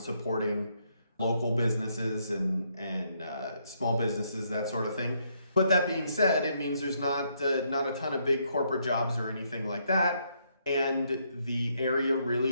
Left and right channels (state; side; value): inverted; both; correlation -0.74